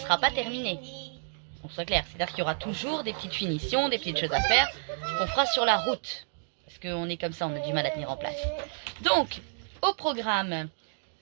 pas terminée. On soit clair. C'est-à-dire qu'il y aura toujours des petites finitions, des petites choses à faire qu'on fera sur la route. Parce qu'on est comme ça, on a du mal à tenir en place. Donc, au programme,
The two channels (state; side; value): silent; left; digital silence